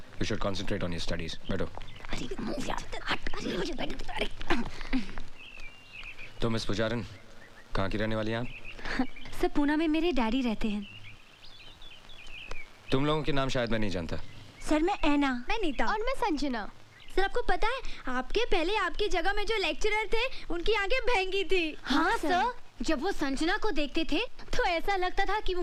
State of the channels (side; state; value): both; identical; correlation 1.00